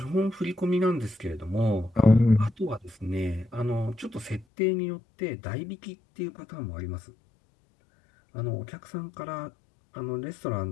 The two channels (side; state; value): right; drops out; at 4.5 s